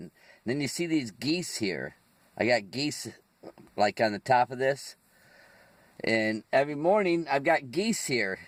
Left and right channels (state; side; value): identical; both; correlation 1.00